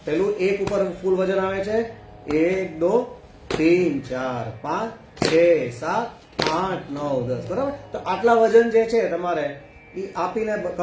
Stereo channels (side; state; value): both; identical; correlation 1.00